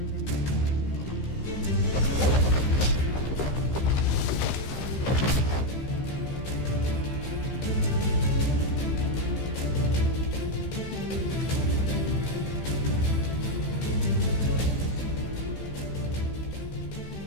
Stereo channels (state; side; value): late; right; 15 ms